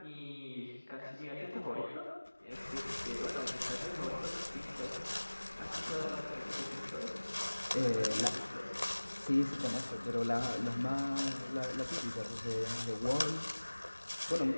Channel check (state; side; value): inverted; both; correlation -1.00